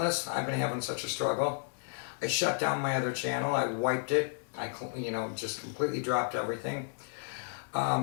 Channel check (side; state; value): right; silent; digital silence